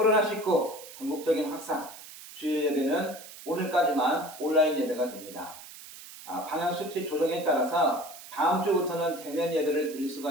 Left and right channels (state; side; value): noise; right; hiss, 16 dB below the sound